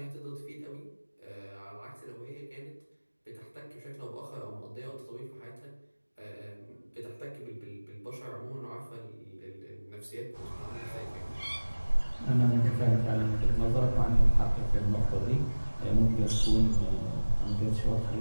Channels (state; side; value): inverted; both; correlation -1.00